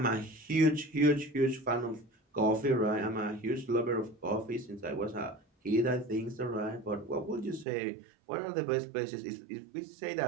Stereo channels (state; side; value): drops out; left; at 7.7 s